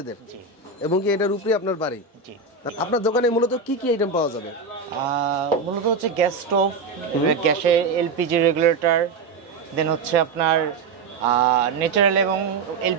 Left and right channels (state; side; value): quieter; left; 4.6 dB